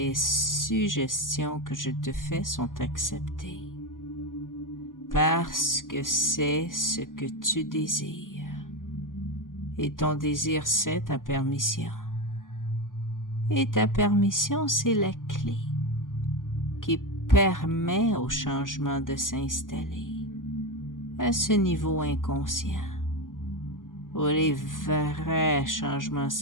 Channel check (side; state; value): right; late; 0.89 ms